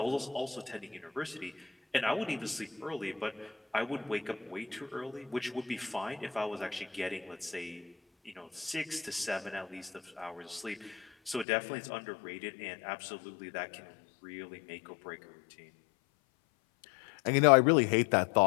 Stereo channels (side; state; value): right; drops out; at 11.5 s